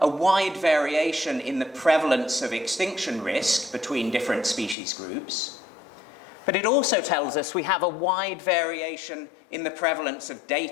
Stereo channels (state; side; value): drops out; right; at 4.8 s